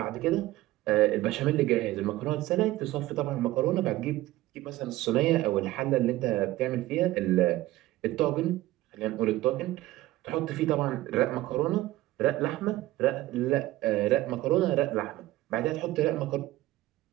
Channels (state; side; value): quieter; left; 16.6 dB